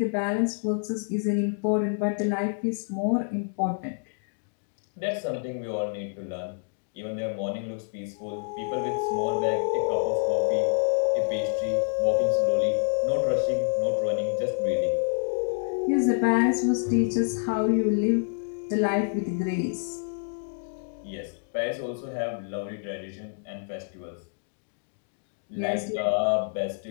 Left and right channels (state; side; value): silent; right; digital silence